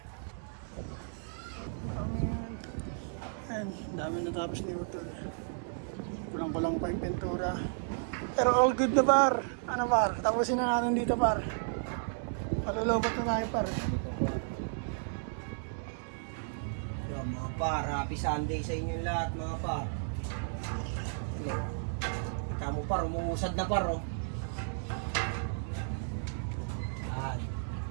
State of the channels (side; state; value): left; silent; digital silence